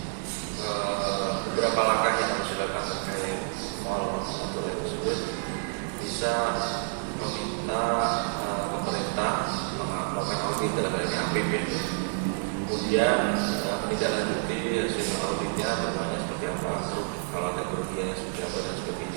beberapa langkah yang sudah kami terkait mall atau tersebut bisa meminta pemerintah melakukan audit dalam hal ini APB, kemudian menindaklanjuti hasil auditnya temuannya seperti apa, kalau ada kerugian yang sudah dan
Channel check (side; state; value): left; silent; 59 dB below the other